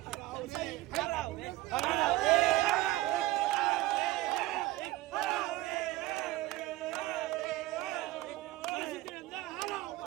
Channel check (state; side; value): quieter; left; 17.3 dB